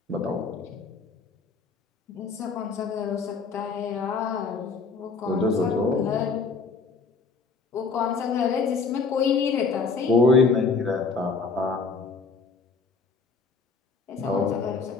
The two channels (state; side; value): quieter; right; 4.6 dB